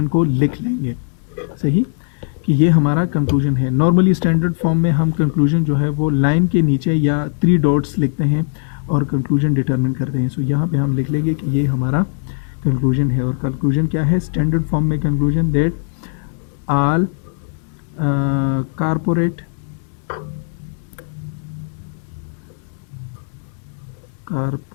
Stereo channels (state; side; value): silent; right; digital silence